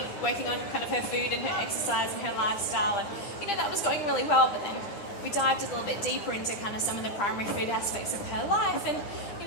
on kind of her food and her exercise and her lifestyle, and that was going really well. But then we dived a little bit deeper into kind of some of the primary food aspects of her life, and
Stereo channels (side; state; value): right; late; 9.9 ms